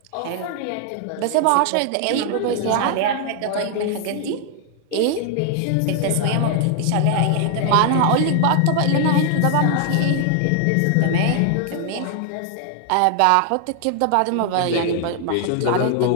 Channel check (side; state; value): both; different; correlation 0.00